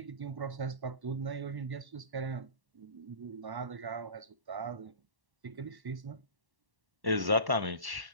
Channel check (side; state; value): left; late; 1.1 ms